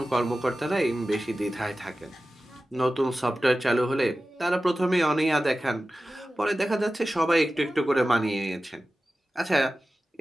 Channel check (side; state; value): both; normal; correlation 0.95